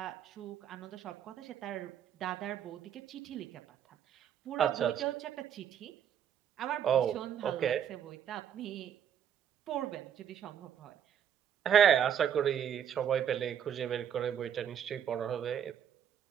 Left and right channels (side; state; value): left; quieter; 9.0 dB